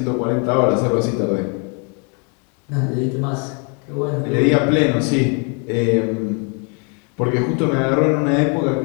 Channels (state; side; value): quieter; right; 36.9 dB